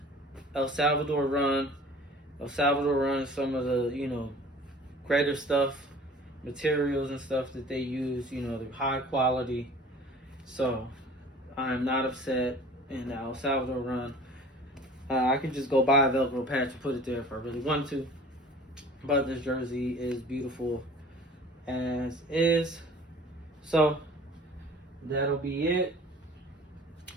El Salvador run is some of the, you know, greater stuff, materials and stuff that they use, you know, the high quality. So I'm not upset in the El Salvador run. I could just go buy a Velcro patch and put it there if I really want to. But this jersey is beautiful as is. So that'll be it.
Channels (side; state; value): both; normal; correlation 0.46